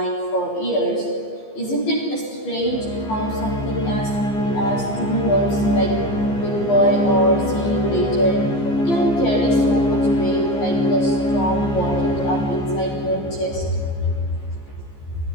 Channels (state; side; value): late; right; 15 ms